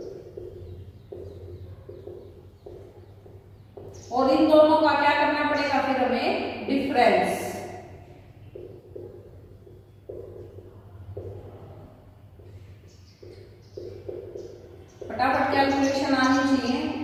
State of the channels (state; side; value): identical; both; correlation 1.00